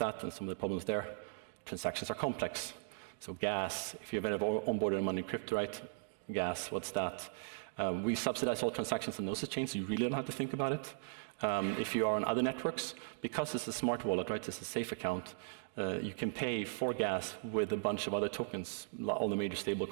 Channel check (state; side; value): silent; left; digital silence